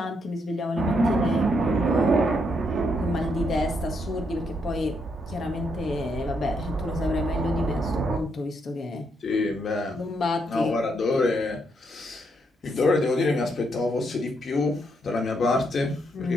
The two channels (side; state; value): both; normal; correlation 0.77